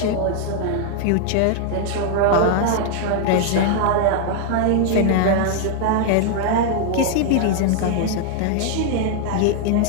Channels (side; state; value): both; different; correlation 0.00